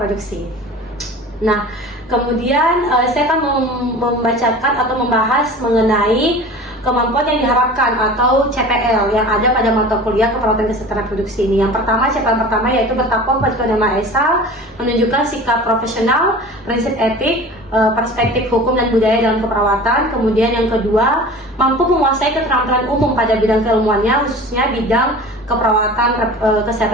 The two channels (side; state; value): both; normal; correlation 0.39